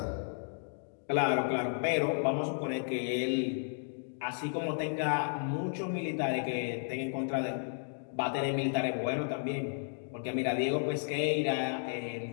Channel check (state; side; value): silent; right; digital silence